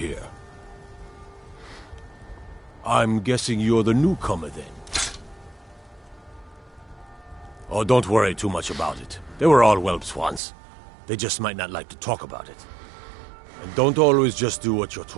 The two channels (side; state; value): left; drops out; at 10.4 s